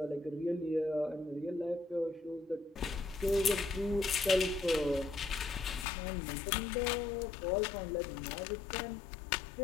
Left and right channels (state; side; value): drops out; right; at 5.9 s